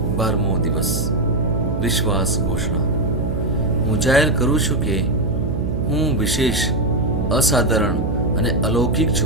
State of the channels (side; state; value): right; noise; hum, 4 dB below the sound